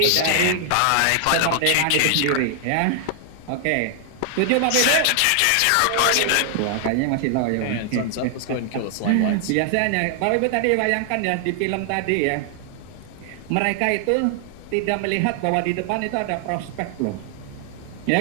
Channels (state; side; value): different; both; correlation 0.00